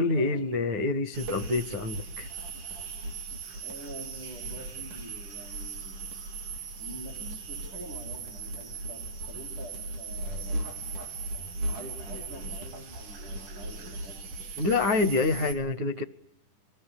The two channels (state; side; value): late; left; 10 ms